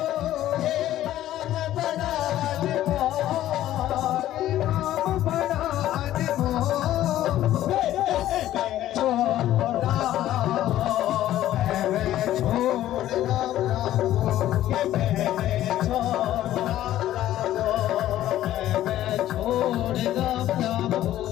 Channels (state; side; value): quieter; right; 13.3 dB